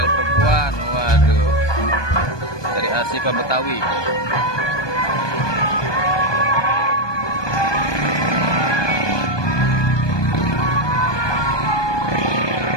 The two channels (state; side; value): late; right; 1.2 ms